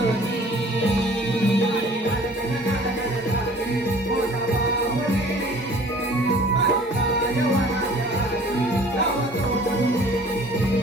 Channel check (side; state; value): both; normal; correlation 0.50